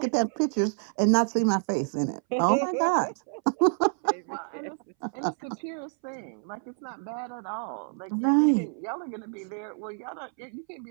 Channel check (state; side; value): silent; left; 59 dB below the other